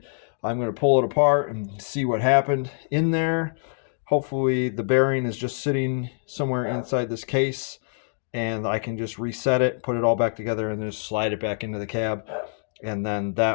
I'm going to pull it apart and see what happened in there. Hopefully the bearing is just sitting somewhere inside this case and I can just reset it, put it all back together, and just slide it back into the cab. And then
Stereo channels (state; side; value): silent; right; digital silence